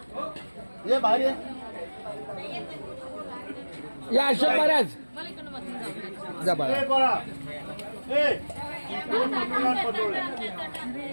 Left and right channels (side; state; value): both; inverted; correlation -1.00